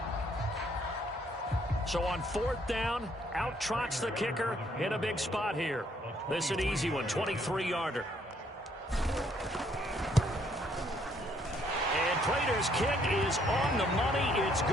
So on 4th down, out trots the kicker in a big spot here. This is an easy one, 23-yarder. And Prater's kick is on the money. It's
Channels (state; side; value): normal; both; correlation 0.67